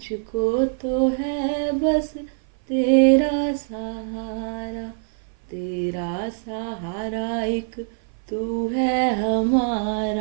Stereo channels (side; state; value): left; silent; 56 dB below the other